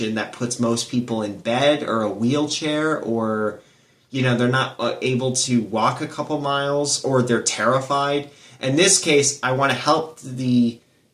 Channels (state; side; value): identical; both; correlation 1.00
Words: that puts most people in bed or a wheelchair, or, they're not able to walk a couple miles, or they're terrified. In this case, I want to help the